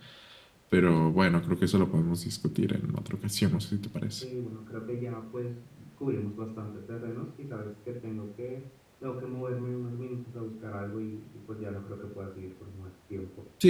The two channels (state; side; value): identical; both; correlation 1.00